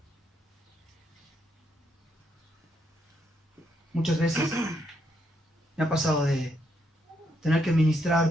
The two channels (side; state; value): both; normal; correlation 0.76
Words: Muchas veces me ha pasado de tener que